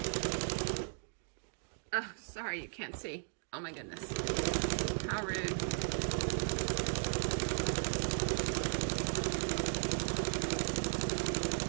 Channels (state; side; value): silent; left; digital silence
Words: Oh, sorry, you can't see. Oh my goodness. How rude.